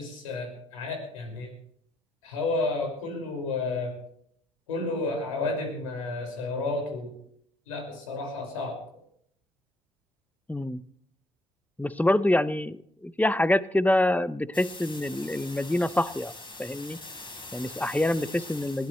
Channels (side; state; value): both; normal; correlation 0.77